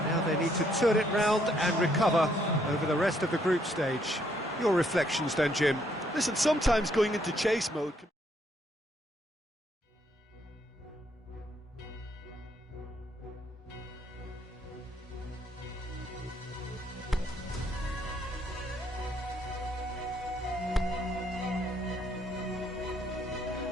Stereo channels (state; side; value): normal; both; correlation 0.70